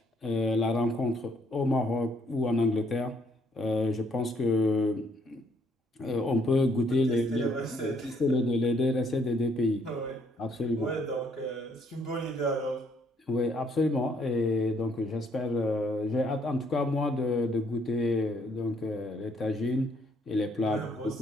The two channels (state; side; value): normal; both; correlation 0.68